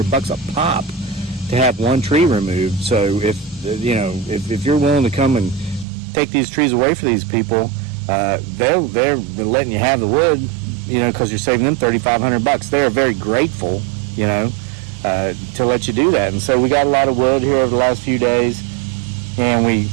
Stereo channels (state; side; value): drops out; left; at 5.9 s